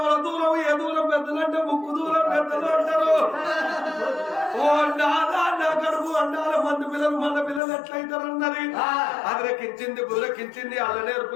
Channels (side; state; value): right; drops out; at 7.6 s